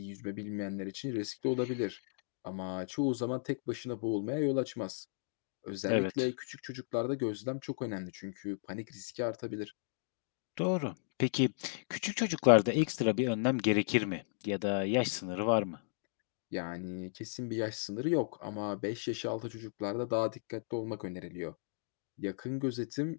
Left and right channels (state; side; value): silent; right; digital silence